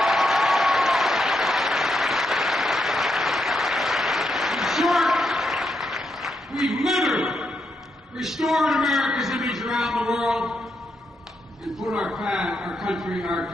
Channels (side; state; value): both; normal; correlation 0.81